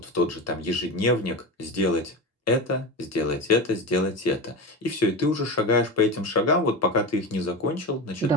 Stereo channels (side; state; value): both; normal; correlation 0.24